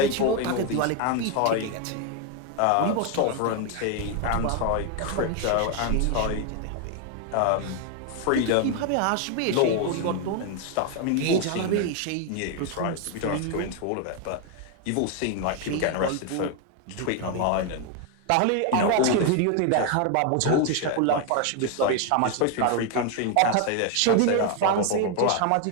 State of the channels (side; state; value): both; different; correlation 0.01